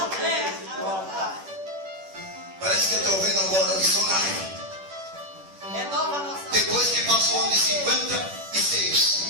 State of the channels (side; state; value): left; late; 10 ms